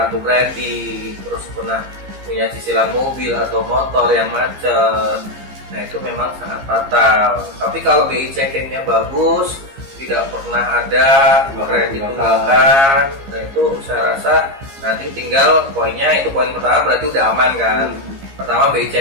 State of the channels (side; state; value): left; late; 15 ms